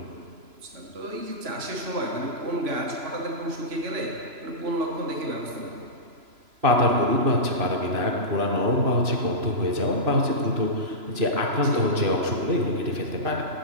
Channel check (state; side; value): late; left; 3.0 ms